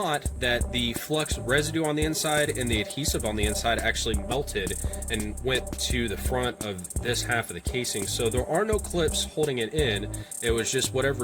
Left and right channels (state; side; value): identical; both; correlation 1.00